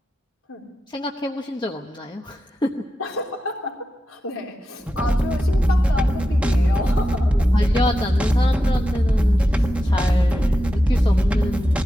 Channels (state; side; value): normal; both; correlation 0.90